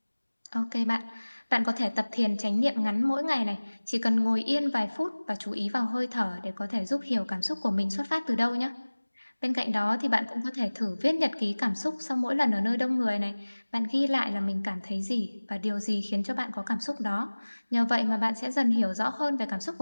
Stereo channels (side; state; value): both; inverted; correlation -1.00